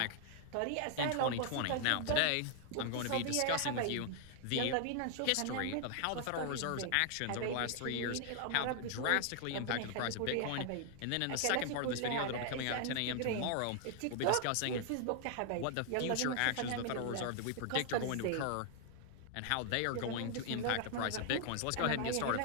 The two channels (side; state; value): both; different; correlation 0.00